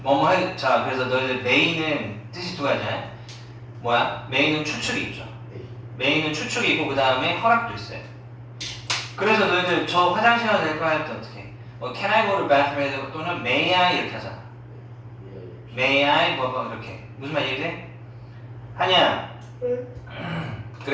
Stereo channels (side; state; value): both; identical; correlation 1.00